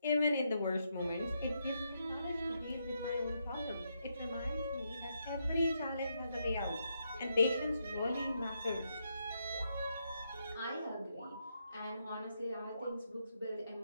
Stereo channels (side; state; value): both; inverted; correlation -0.80